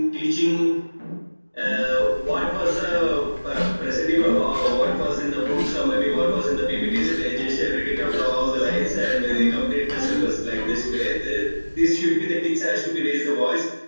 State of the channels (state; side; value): inverted; both; correlation -1.00